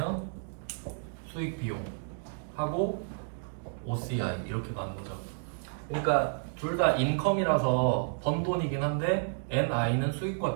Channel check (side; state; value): left; silent; digital silence